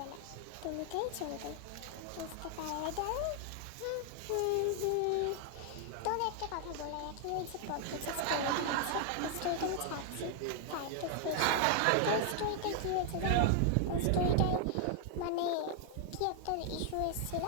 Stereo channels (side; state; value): both; different; correlation 0.00